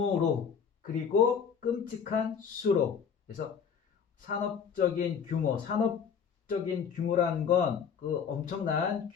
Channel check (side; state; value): right; quieter; 7.0 dB